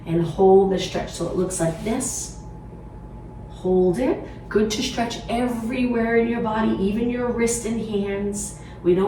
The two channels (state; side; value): identical; both; correlation 1.00